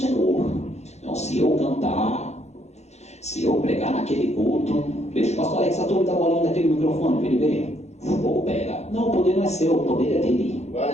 Então, se eu cantar, se eu pregar naquele culto, deixa o pastor Alex a turma da bolinha daquele microfone para ele ver. Ou pega. Não, o poder não é seu, o poder é dele.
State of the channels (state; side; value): late; right; 0.32 ms